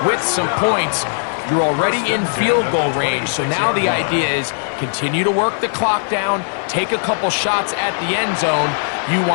with some points. You're already in field goal range, so now the idea is continue to work the clock down, take a couple shots at the end zone. You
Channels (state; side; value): silent; right; 56 dB below the other